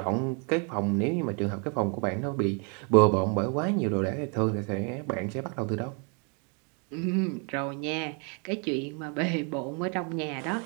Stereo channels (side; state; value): left; quieter; 36.3 dB